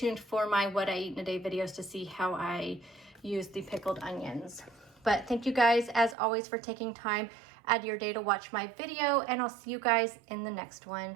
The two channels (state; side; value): drops out; left; at 6.2 s